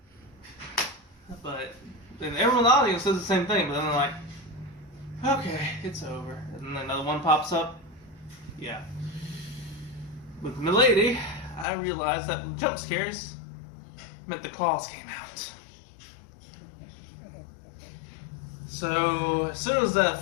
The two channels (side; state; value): right; drops out; at 11.7 s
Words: But then everyone in the audience says the same thing, but then they're like, "Okay, it's over." And then another one pops up. Yeah. With Milady, I realized that with jump scares meant the claws came out. So as soon as that